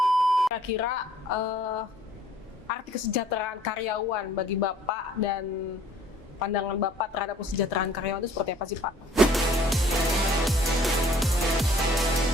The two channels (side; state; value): both; normal; correlation 0.56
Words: Kira-kira arti kesejahteraan karyawan bagi Bapak dan pandangan Bapak terhadap kesejahteraan karyawan itu seperti apa sih Pak?